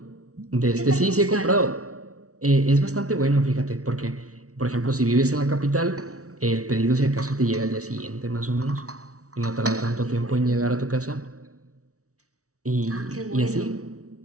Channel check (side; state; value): left; late; 0.65 ms